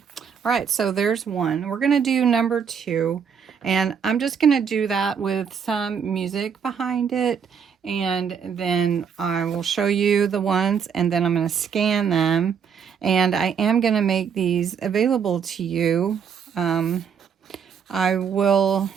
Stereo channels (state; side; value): quieter; left; 7.0 dB